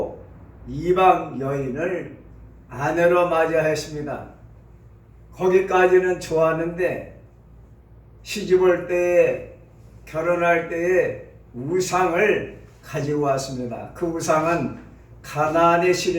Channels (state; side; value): identical; both; correlation 1.00